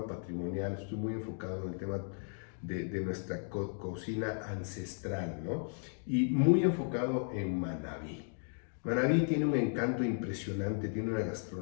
patrimonial, estoy muy enfocado en el tema de nuestra cocina ancestral, ¿no? Y muy enfocado en Manabí. Manabí tiene un encanto impresionante, tiene una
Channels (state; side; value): silent; right; 54 dB below the other